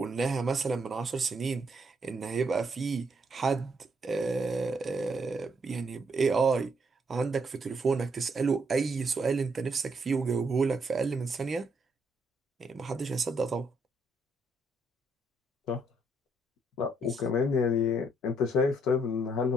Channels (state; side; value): normal; both; correlation 0.73